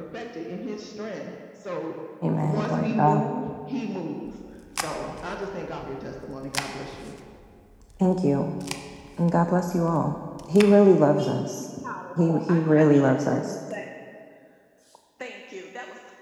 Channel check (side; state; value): both; identical; correlation 1.00